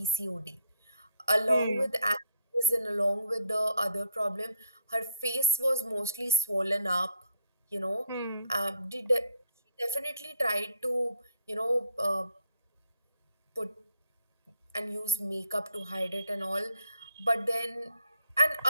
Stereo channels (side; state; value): both; inverted; correlation -0.68